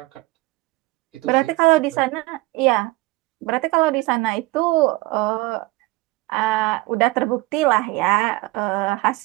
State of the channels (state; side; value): quieter; left; 21.1 dB